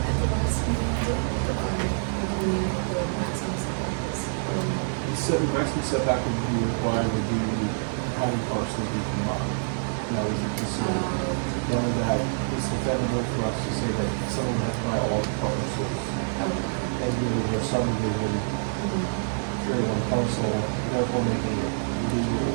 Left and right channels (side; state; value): left; silent; digital silence